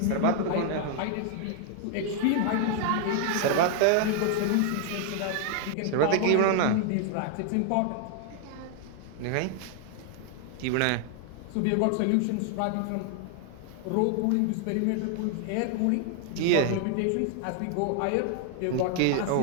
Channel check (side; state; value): both; different; correlation 0.00